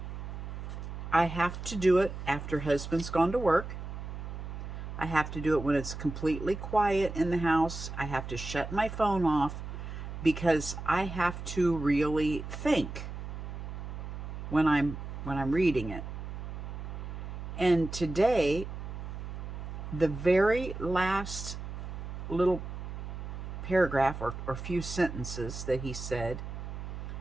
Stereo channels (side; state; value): right; noise; hum, 8 dB below the sound